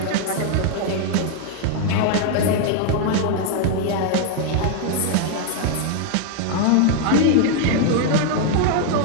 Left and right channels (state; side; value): different; both; correlation 0.00